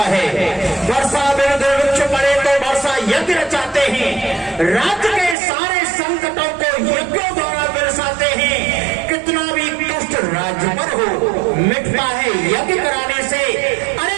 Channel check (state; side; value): drops out; left; at 5.4 s